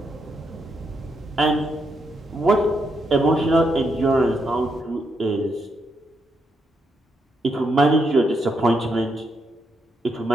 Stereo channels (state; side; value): normal; both; correlation 0.80